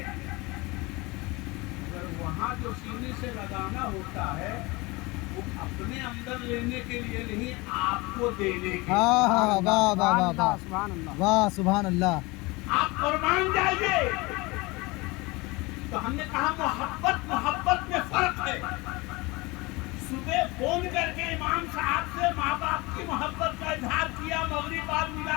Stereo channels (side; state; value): right; quieter; 23.9 dB